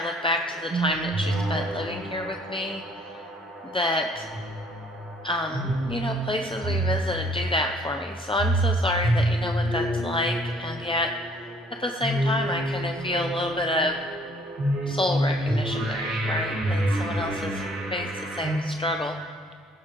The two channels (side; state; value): both; normal; correlation 0.60